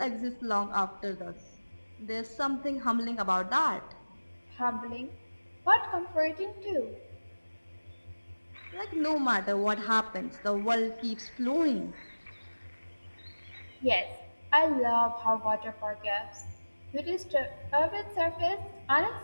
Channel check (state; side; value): inverted; both; correlation -1.00